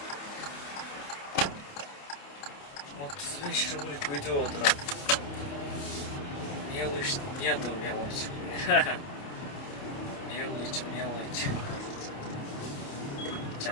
Вот с вечера будет видео утро. Мелочь, нету мелочи. Мелочь.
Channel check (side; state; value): right; late; 28 ms